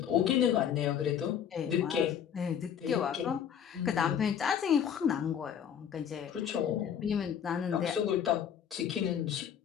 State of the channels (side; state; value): right; quieter; 8.6 dB